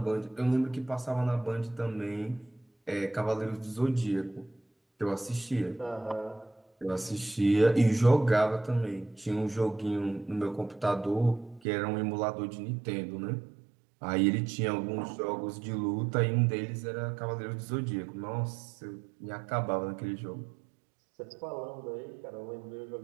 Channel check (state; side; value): drops out; left; at 11.6 s